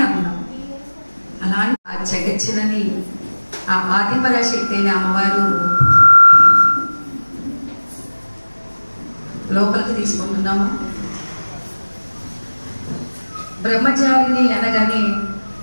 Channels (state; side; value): inverted; both; correlation -1.00